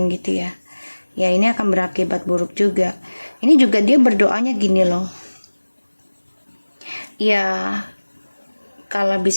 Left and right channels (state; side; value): inverted; both; correlation -1.00